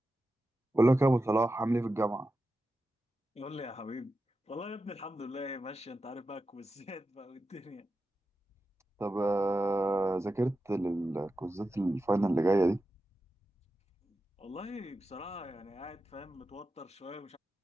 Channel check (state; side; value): normal; both; correlation 0.91